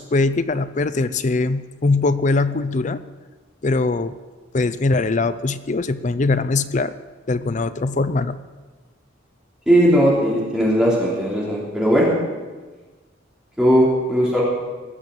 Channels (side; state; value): both; normal; correlation 0.66